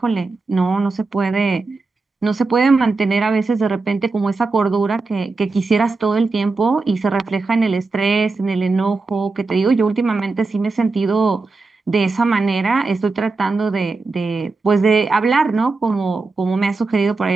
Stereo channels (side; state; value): left; quieter; 3.8 dB